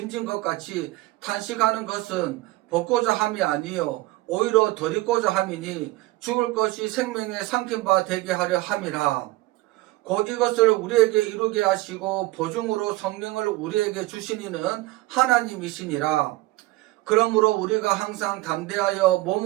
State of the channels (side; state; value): left; quieter; 19.3 dB